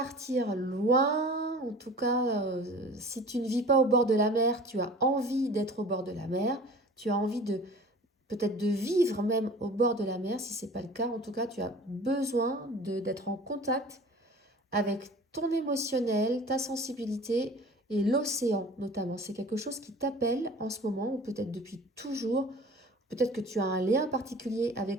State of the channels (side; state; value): both; normal; correlation 0.42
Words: loin. En tout cas, si tu ne vis pas au bord de la mer, tu as envie d'être au bord de la mer. Tu as envie de peut-être de vivre même au bord de la mer. Si ce n'est pas le cas, en tout cas, tu as besoin d'être en contact avec ton émotionnel, ta sensibilité et l'océan notamment. C'est quelque chose qui t'appelle en ce moment ou peut-être depuis toujours. Peut-être que tu as un lien particulier